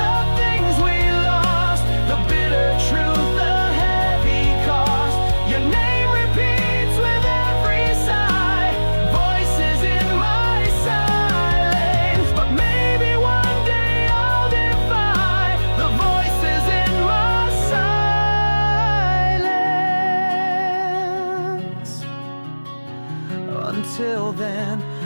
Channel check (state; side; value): inverted; both; correlation -1.00